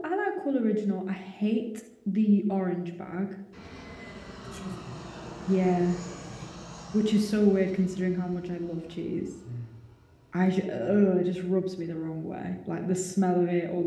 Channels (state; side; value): identical; both; correlation 1.00